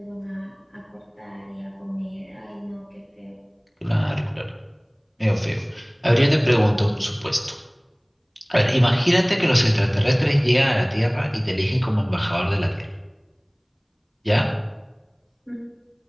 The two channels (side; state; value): both; identical; correlation 1.00